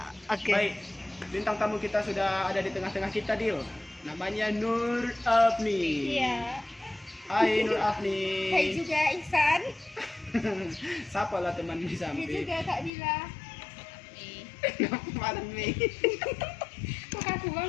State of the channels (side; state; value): right; drops out; at 12.9 s